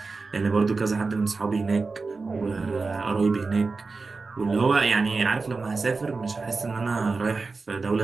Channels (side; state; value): left; quieter; 4.1 dB